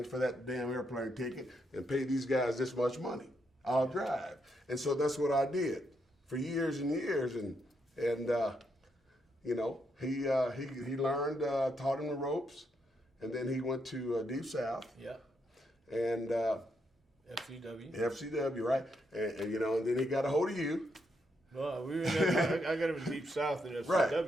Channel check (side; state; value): both; normal; correlation 0.79